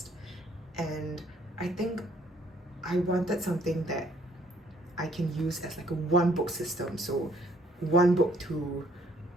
and I think I wanted something that I can use as like a one book system, so one book to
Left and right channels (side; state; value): both; normal; correlation 0.64